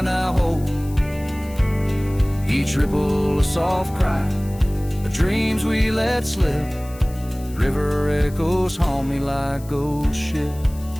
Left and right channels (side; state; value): left; noise; hiss, 21 dB below the sound